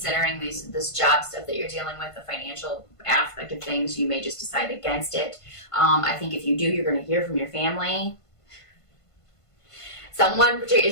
this job stuff that you're dealing with, the financial aspect of things, you may just decide against it. I think if you do, you're going to hear from your family. Someone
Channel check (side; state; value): right; late; 1.5 ms